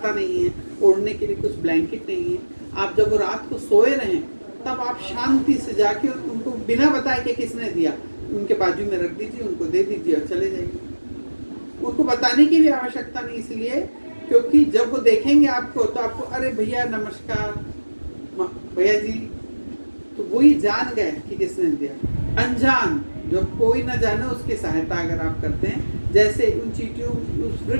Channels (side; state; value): both; inverted; correlation -1.00